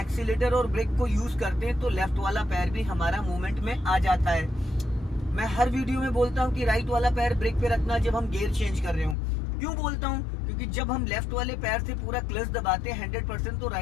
और ब्रेक को यूज करते हैं तो लेफ्ट वाला पैर भी हमारा मूवमेंट में आ जाता है। मैं हर वीडियो में बोलता हूं कि राइट वाला पैर ब्रेक पे रखना जब हम गियर चेंज कर रहे हो। क्यों बोलता हूं? क्योंकि जब हम लेफ्ट वाले पैर से पूरा क्लच दबाते हैं 100%, तो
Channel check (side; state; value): right; drops out; at 9.2 s